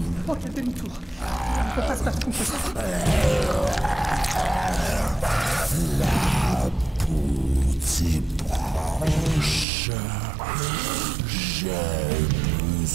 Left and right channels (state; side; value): drops out; left; at 9.7 s